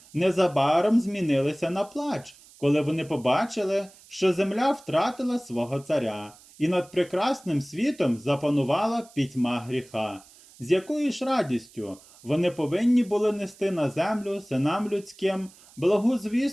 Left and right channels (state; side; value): noise; right; hiss, 24 dB below the sound